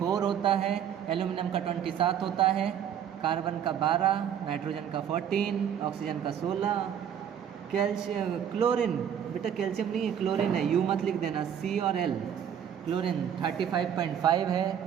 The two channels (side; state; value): left; quieter; 9.0 dB